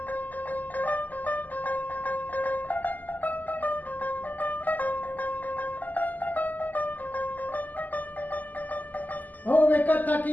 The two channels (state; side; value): late; right; 0.083 ms